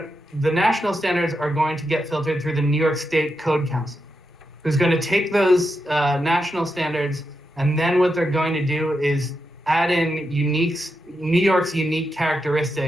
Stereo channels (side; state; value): both; normal; correlation 0.85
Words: the national standards are going to get filtered through the New York State Code Council, who's going to take those national standards, and then what they're going to do is add in New York's unique